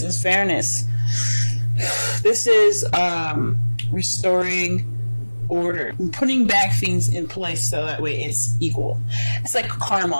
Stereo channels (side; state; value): both; inverted; correlation -1.00